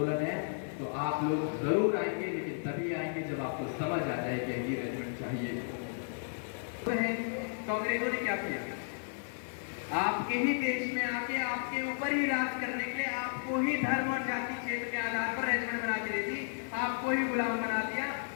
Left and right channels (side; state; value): right; silent; 55 dB below the other